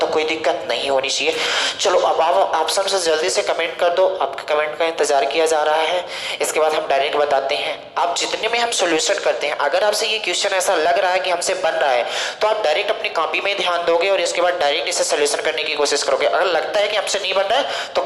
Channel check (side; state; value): both; identical; correlation 1.00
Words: कोई दिक्कत नहीं होनी चाहिए। चलो अब आप ऑप्शन से जल्दी से कमेंट कर दो, आपके कमेंट का इंतजार किया जा रहा है। इसके बाद हम डायरेक्ट बताते हैं। आप जितने में हम सॉल्यूशन करते हैं, अगर आपसे ये क्वेश्चन ऐसा लग रहा है कि हमसे बन रहा है तो आप डायरेक्ट अपनी कॉपी में ध्यान दोगे और इसके बाद डायरेक्ट इसे सॉल्यूशन करने की कोशिश करोगे। अगर लगता है कि हमसे नहीं बन रहा है तो